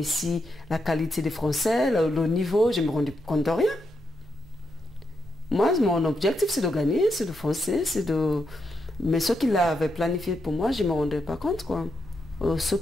la qualité des Français, le niveau, je ne me rendais compte de rien. Moi, mon objectif, c'est de gagner, c'est de foncer, c'est de... Mais ce qu'il avait planifié pour moi, je ne me rendais pas compte, quoi. Ce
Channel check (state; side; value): normal; both; correlation 0.83